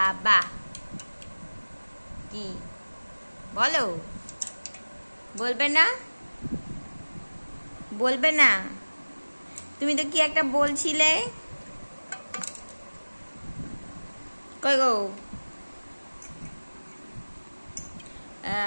বা কি বলো? বলবে না? বলবে না? তুমি তো কি একটা বলছিলে। কই গো?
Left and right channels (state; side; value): inverted; both; correlation -1.00